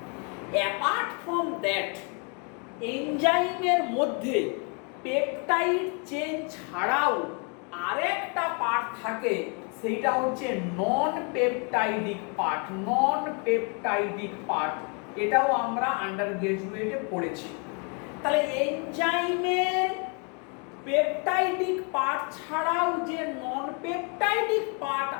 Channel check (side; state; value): right; quieter; 36.4 dB